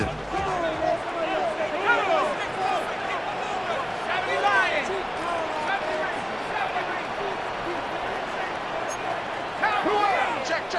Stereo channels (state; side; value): identical; both; correlation 1.00